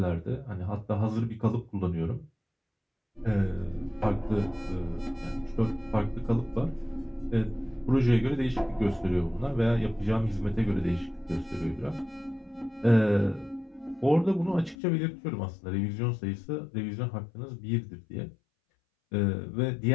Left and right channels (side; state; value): right; drops out; at 14.8 s